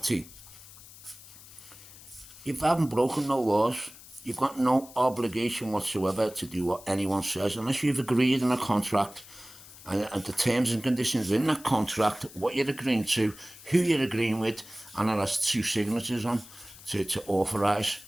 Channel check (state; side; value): noise; left; hiss, 19 dB below the sound